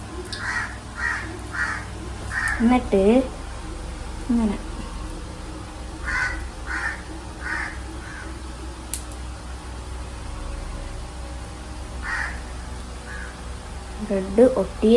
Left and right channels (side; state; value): both; identical; correlation 1.00